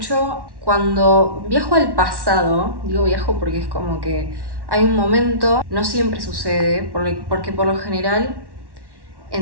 cuando viajo al pasado, digo viajo porque es como que hay un momento, no siempre sucede, porque por lo general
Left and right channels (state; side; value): late; left; 1.1 ms